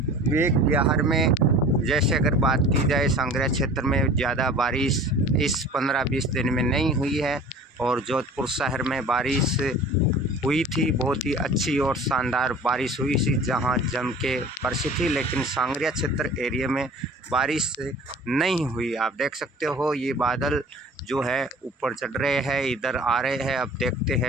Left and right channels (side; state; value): both; normal; correlation 0.44